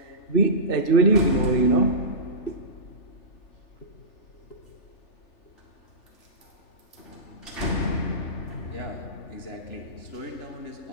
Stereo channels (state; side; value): late; right; 3.4 ms